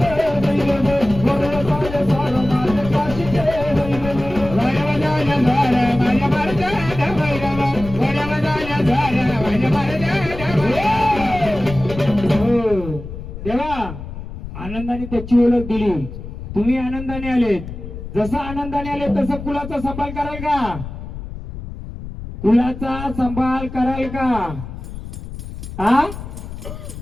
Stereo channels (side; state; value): left; noise; rumble, 10 dB below the sound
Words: देवा आनंदाने त्याची ओळख दिली, तुम्ही आनंदाने आलेत. जसं आनंदाने आले तसं कुलाचा सांभाळ कराल का. कुलाचा सांभाळ कराल का. हा